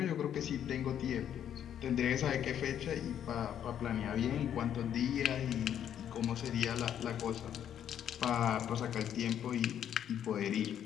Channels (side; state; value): right; quieter; 9.8 dB